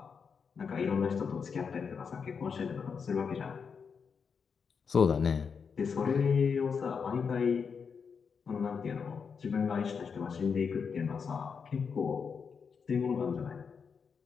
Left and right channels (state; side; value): quieter; right; 6.0 dB